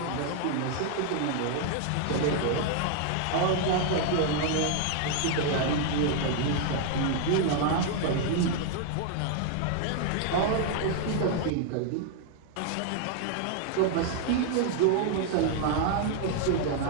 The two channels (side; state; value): both; different; correlation 0.00